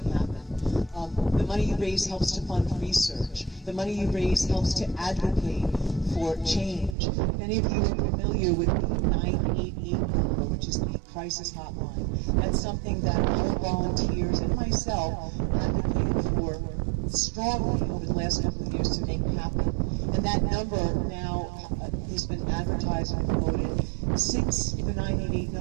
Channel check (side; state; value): left; drops out; at 7.0 s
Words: happen. The money you raise helps to fund research. The money you raise helps to advocate for change. If any of you are familiar with the 988 number, which is the crisis hotline, that's something that our volunteers and myself advocated for strongly over the last couple of years to make happen. And that number now has been advertised and promoted. Since the 988